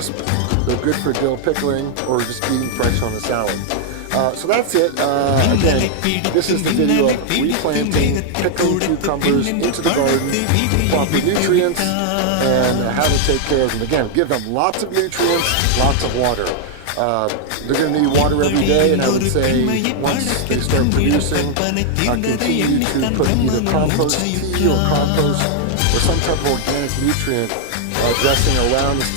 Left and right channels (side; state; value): both; different; correlation 0.00